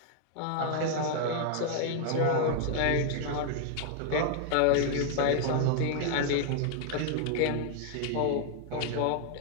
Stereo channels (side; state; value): both; different; correlation 0.00